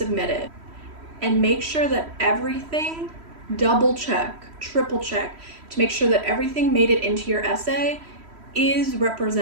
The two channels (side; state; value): left; late; 3.1 ms